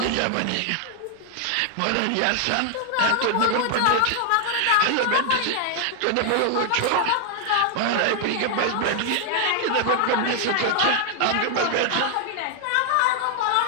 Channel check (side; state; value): both; different; correlation 0.00